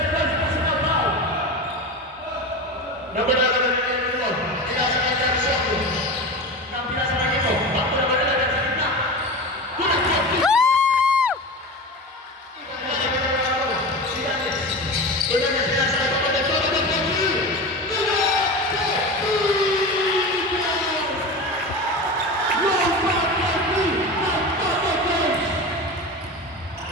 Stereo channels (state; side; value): normal; both; correlation 0.27